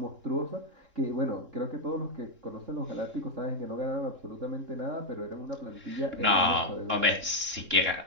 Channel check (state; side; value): late; left; 3.7 ms